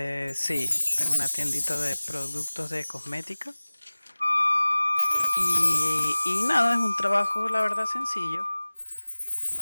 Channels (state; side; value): inverted; both; correlation -1.00